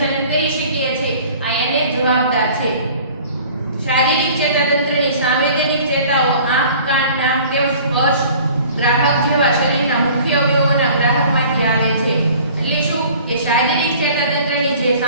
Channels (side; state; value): both; inverted; correlation -0.48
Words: કરી શકીએ છીએ આ એને જવાબદાર છે. શારીરિક ચેતાતંત્રની સંવેદનિક ચેતાઓ આંખ, કાન, નાક તેમજ સ્પર્શ ગ્રાહક જેવા શરીરના મુખ્ય અવયવોના ગ્રાહકમાંથી આવે છે. એટલે શું કે શારીરિક ચેતાતંત્રની જે